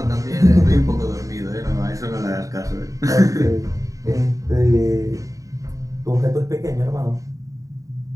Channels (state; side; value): late; left; 0.16 ms